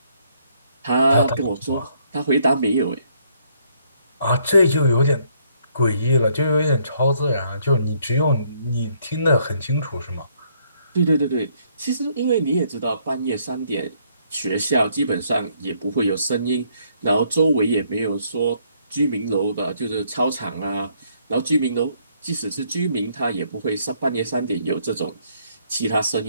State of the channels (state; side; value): inverted; both; correlation -0.69